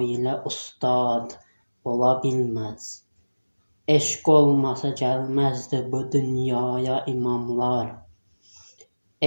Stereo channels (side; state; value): both; inverted; correlation -1.00